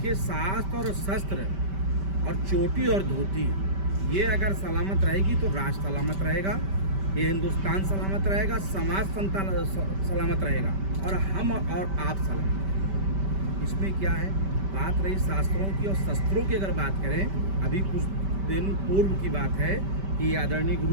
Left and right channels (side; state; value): left; late; 5.1 ms